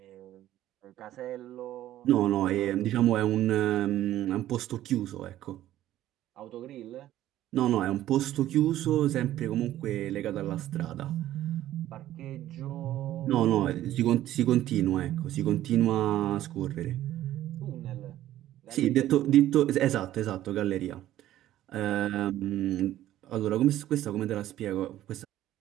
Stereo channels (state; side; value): quieter; left; 13.5 dB